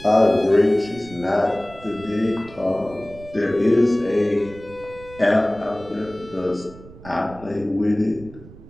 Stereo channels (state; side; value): noise; right; rumble, 19 dB below the sound